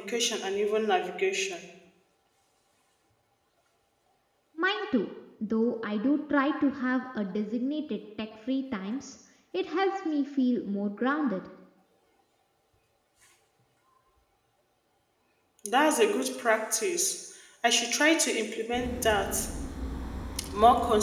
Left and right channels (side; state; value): both; identical; correlation 1.00